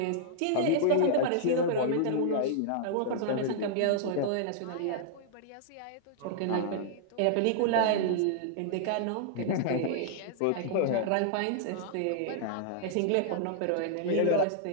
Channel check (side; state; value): both; different; correlation -0.01